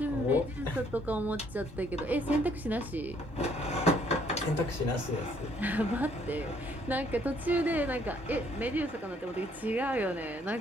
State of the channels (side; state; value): both; normal; correlation 0.65